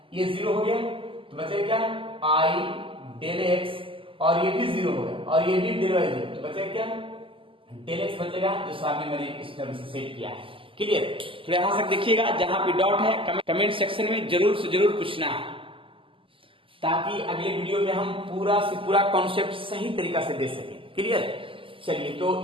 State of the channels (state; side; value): late; left; 0.25 ms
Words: ये 0 हो गया, तो बचेगा क्या आई डेल एक्स, और ये भी 0 हो गया और ये भी डेल वाई 0, तो बचेगा क्या डेल एक्स बचेगा, जो सामने मैंने इस टर्म से सेट किया है। क्लियर। तो यहां तक देखिएगा, जहां पे डॉट है कमेंट सेक्शन में जरूर से जरूर पूछना है, ताकि अगले वीडियो में हम पूरा से पूरा कॉन्सेप्ट सही तरीका से दे सकें। क्लियर। चलिए, तो